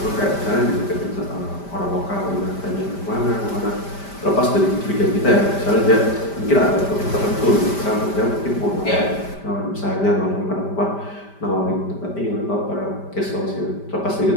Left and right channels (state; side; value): late; right; 5.1 ms